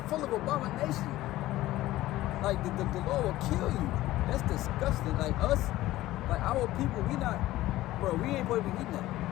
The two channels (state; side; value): quieter; right; 16.1 dB